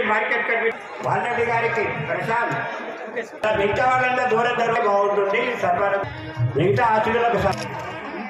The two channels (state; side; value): identical; both; correlation 1.00